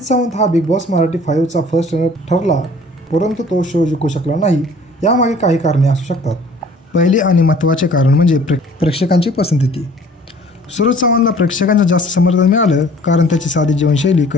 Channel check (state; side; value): normal; both; correlation 0.52